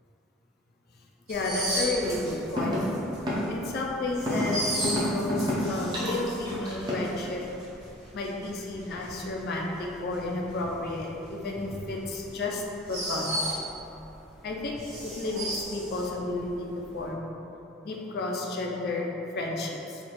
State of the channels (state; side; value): normal; both; correlation 0.41